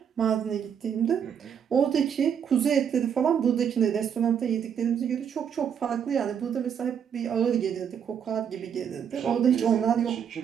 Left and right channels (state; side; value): quieter; left; 8.0 dB